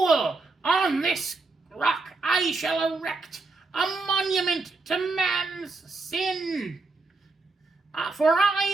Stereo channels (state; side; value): quieter; left; 3.6 dB